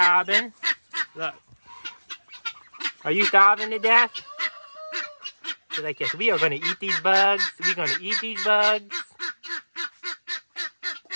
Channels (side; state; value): both; inverted; correlation -1.00